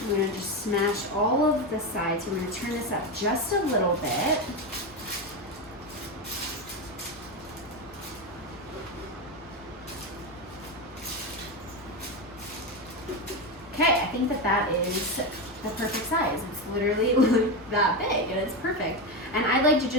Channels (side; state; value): both; normal; correlation 0.14